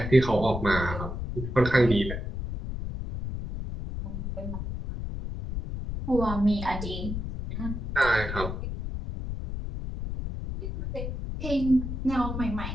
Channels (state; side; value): noise; left; rumble, 5 dB below the sound